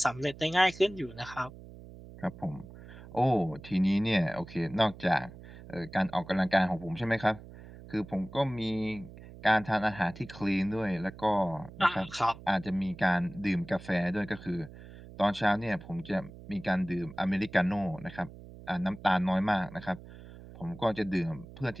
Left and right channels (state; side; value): noise; right; hum, 17 dB below the sound